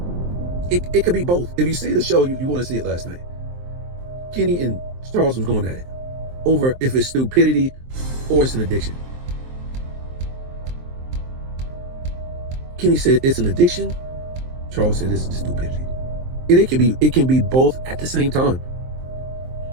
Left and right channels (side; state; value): left; late; 23 ms